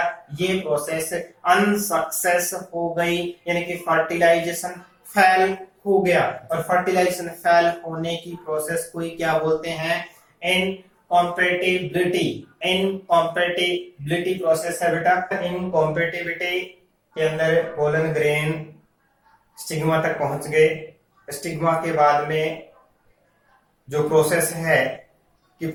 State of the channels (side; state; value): both; identical; correlation 1.00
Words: ये प्रोसेस अनसक्सेस हो गई, यानी कि फर्टिलाइजेशन फेल हो गया। और फर्टिलाइजेशन फेल होने की प्रोसेस को ही क्या बोलते हैं? इनकॉम्पेटिबिलिटी। इनकॉम्पेटिबिलिटी प्रोसेस है बेटा। इनकॉम्पेटिबिलिटी के अंदर पोलन ग्रेन स्टिग्मा तक पहुंच गए। स्टिग्मा के बाद में जो प्रोसेस है कि